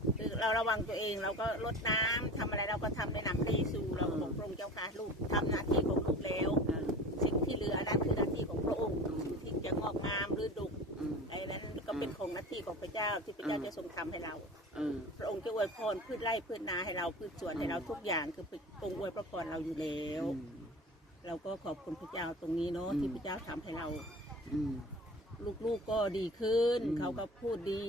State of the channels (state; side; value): normal; both; correlation 0.37